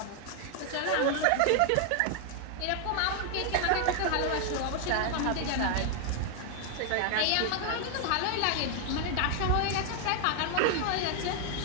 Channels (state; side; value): different; both; correlation 0.00